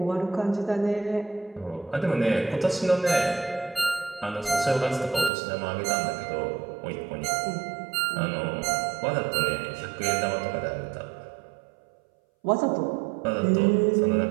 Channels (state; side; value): drops out; left; at 5.3 s